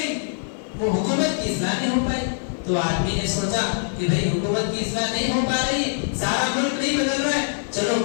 وہ حکومت کی اصلاح نہیں ہو پائی. تو آدمی نے سوچا کہ بھئی حکومت کی اصلاح نہیں ہو پا رہی ہے، سارا ملک نہیں بدل رہا ہے، چلو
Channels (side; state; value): right; silent; digital silence